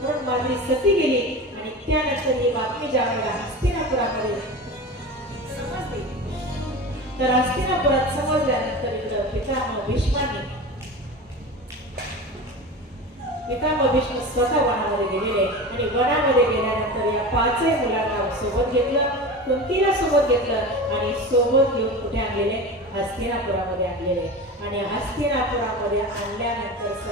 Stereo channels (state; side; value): normal; both; correlation 0.29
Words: म्हणून माद्री सती गेली आणि त्यानंतर ही बातमी ज्या वेळेला हस्तिनापुरामध्ये समजली तर हस्तिनापुरात समजल्यानंतर इकडं पितामह भीष्म स्वतः वनामध्ये गेलेले आणि वनामध्ये गेल्यानंतर या 5ही मुलांना सोबत घेतलं. कुंतीला सोबत घेतलं आणि सोबत घेऊन कुठे आणलेले? हस्तिनापुरामध्ये आणलेले. आणि हस्तिनापुरामध्ये आणल्यानंतर